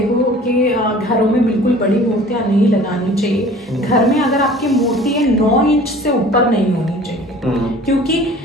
कि घरों में बिल्कुल बड़ी मूर्तियां नहीं लगानी चाहिए। घर में अगर आपकी मूर्ति है 9 इंच से ऊपर नहीं होनी चाहिए, क्योंकि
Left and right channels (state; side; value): normal; both; correlation 0.47